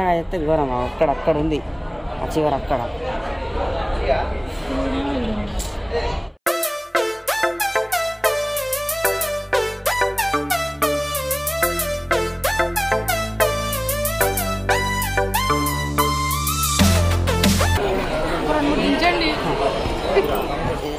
చెప్తే ఘోరం అక్కడ ఉంది, ఆ చివరి అక్కడ.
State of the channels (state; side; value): identical; both; correlation 1.00